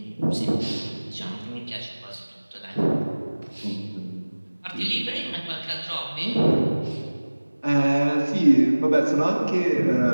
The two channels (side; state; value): both; inverted; correlation -1.00